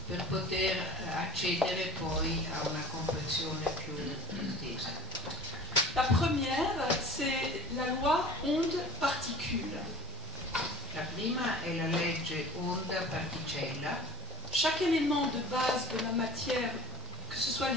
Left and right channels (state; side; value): normal; both; correlation 0.45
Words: per poter accedere poi a una comprensione più estesa. La première, c'est la loi onde-particule. La prima è la legge onda-particella. Chaque élément de base de la matière, que ce soit